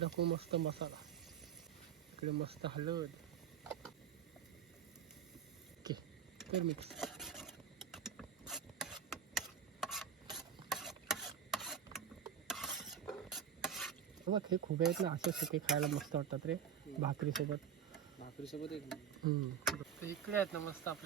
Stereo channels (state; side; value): quieter; left; 8.0 dB